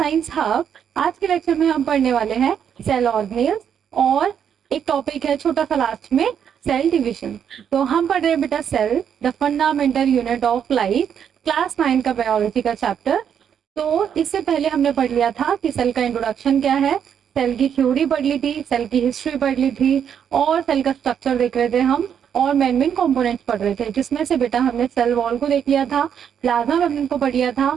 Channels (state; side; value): quieter; left; 8.3 dB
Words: hub. आज के lecture में हम पढ़ने वाले हैं सेल ऑर्गेनेल्स और एक टॉपिक है छोटा सा लास्ट में, सेल डिवीजन। तो हम पढ़ रहे हैं बेटा cell the fundamental unit of life, class 9 का बायोलॉजी का चैप्टर। तो इससे पहले हमने पढ़ लिया था कि सेल का इंट्रोडक्शन क्या है, सेल की थ्योरी पढ़ ली थी, सेल की हिस्ट्री पढ़ ली थी और सेल का स्ट्रक्चर देख रहे थे हम और मेन कंपोनेंट्स पढ़ रहे थे, जिसमें से बेटा हमने सेल वॉल को देख लिया था, प्लाज्मा मेम्ब्रेन को पढ़ लिया था,